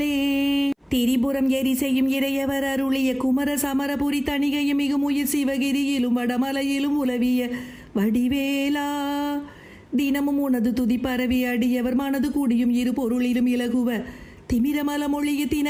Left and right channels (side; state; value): both; identical; correlation 1.00